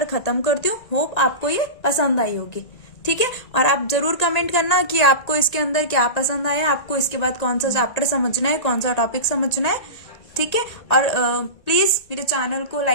खत्म करती हूँ। होप आपको ये पसंद आई होगी, ठीक है। और आप जरूर कमेंट करना कि आपको इसके अंदर क्या पसंद आया, आपको इसके बाद कौन सा चैप्टर समझना है, कौन सा टॉपिक समझना है, ठीक है। और प्लीज मेरे चैनल को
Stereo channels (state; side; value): late; right; 1.9 ms